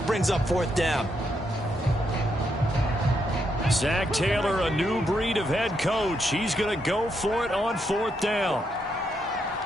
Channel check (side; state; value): both; normal; correlation 0.79